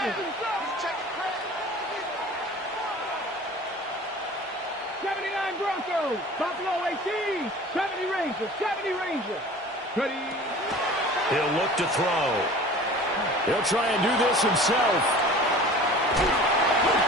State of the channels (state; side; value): normal; both; correlation 0.42